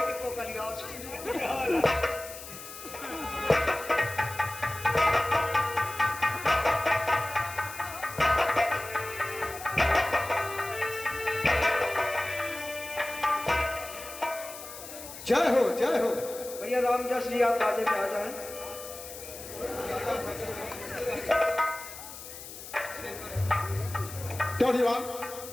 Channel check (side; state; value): left; noise; hiss, 13 dB below the sound